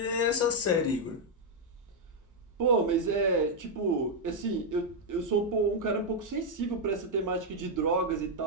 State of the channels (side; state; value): both; normal; correlation 0.00